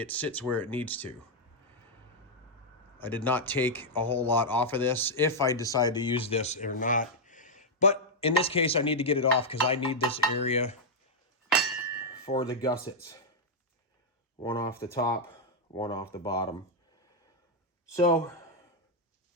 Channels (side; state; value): both; normal; correlation -0.03